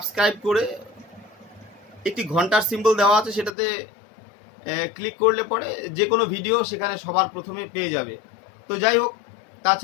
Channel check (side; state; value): right; drops out; at 3.5 s